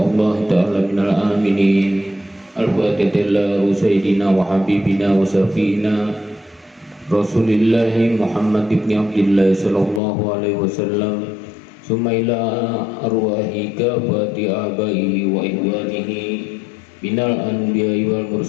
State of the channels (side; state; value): right; drops out; at 10.0 s